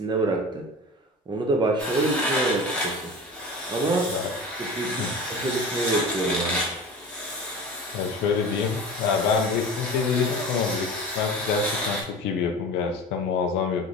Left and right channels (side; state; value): both; normal; correlation 0.34